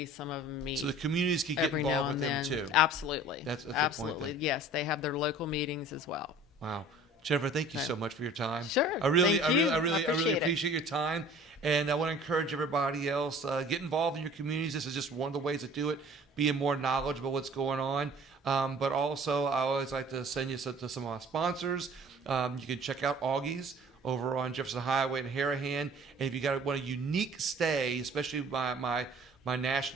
Some of them meet. So the communities can get every now involved and with them then. too. Absolutely. That's the point absolutely. then. Yes, they have their local meetings as well. Wow. Jennifer, thank you so much for your time. Sure. I really Thank you. I really appreciate it. appreciate your time. And I want to encourage everybody else, get involved in your communities. This is just one of the ways to do it, being more knowledgeable what's going on. But also, I always like to send you to some of our sponsors. You can check out Augie's over on Jefferson Highway in Harahan. And if you want a unique stay, especially my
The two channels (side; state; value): both; normal; correlation 0.48